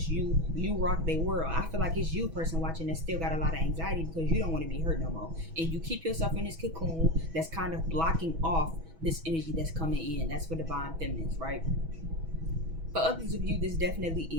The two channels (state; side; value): late; left; 6.1 ms